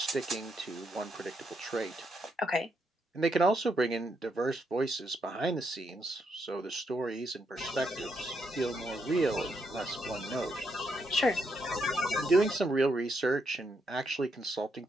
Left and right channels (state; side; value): normal; both; correlation 0.78